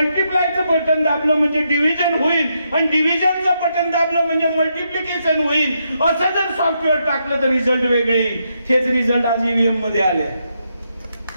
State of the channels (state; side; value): inverted; both; correlation -0.80